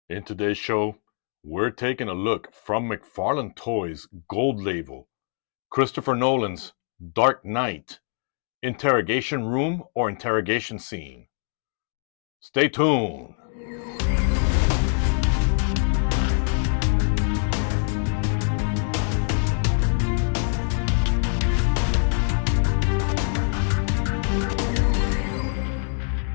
In today's show, we're taking a look from Mcfarlane Toys' Gold Label, Christopher Nolan's Dark Knight, Interrogation Room or Interrogation Scene. Stay tuned.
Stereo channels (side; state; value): right; silent; 56 dB below the other